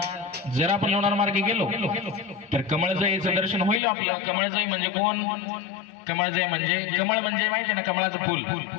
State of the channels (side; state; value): right; drops out; at 3.8 s